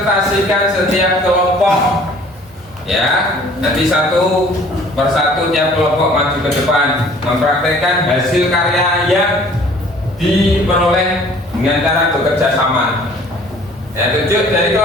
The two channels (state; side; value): normal; both; correlation 0.53